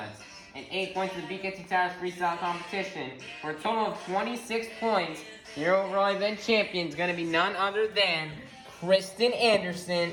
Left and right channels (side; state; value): both; identical; correlation 1.00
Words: and 8 points in the BKT Tires Freestyle competition, for a total of 26 points. Your overall event champion is going to be none other than Kristen Anderson